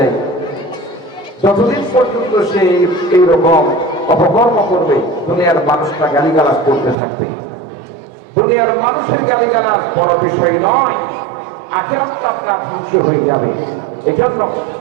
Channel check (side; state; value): left; drops out; at 7.0 s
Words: যতদিন পর্যন্ত সে এইরকম অপকর্ম করবে, দুনিয়ার মানুষরা গালিগালাজ করতে থাকবে। দুনিয়ার মানুষের গালিগালাজ বড় বিষয় নয়, আখিরাতটা আপনার ধ্বংস হয়ে যাবে। এজন্য